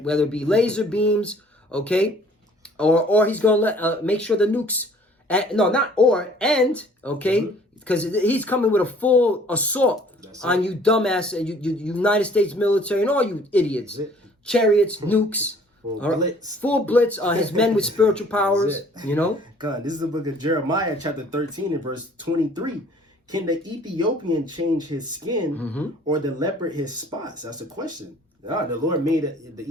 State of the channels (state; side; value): normal; both; correlation 0.55